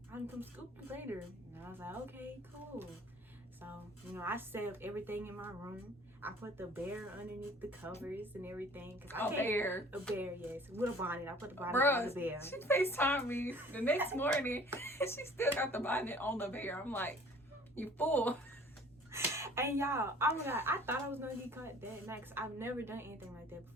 I can come scoop you later. And I was like, okay, cool. So, you know, I set up everything in my room. I put the bear underneath the covers and everything. A bear? A bear, yes. With a bonnet. I put the bonnet on the bear. She FaceTimed me the next morning and she still got the bonnet on the bear. I'm like, you fool. And y'all, oh my God, I thought I was going to get caught that night because I've never done anything like that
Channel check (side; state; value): both; normal; correlation 0.51